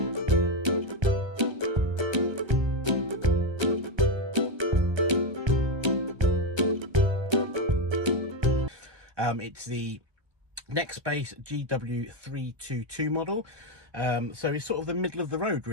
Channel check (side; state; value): left; late; 1.3 ms